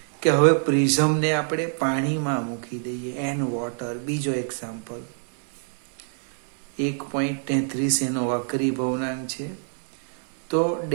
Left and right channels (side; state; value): left; silent; digital silence